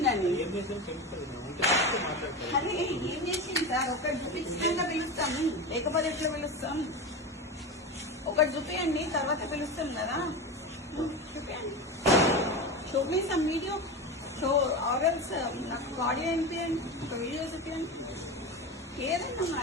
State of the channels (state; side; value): normal; both; correlation 0.23